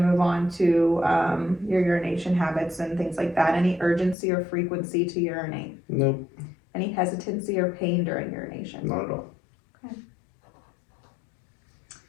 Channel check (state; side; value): drops out; right; at 4.2 s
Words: on to your urination habits and things like that. Any urgency or frequency to urinate? Nope, Any hesitancy or pain during urination? not at all.